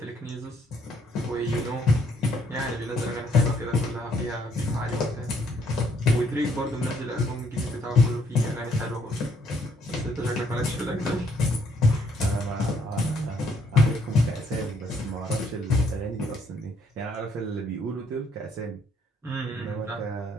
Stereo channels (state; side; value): normal; both; correlation 0.67